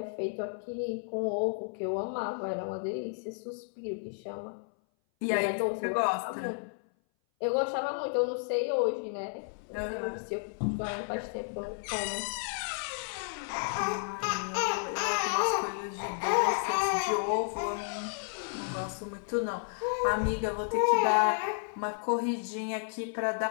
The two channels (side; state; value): right; silent; 56 dB below the other